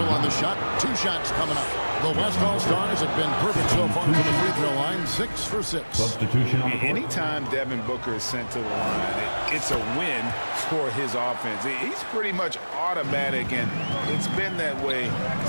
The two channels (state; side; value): inverted; both; correlation -1.00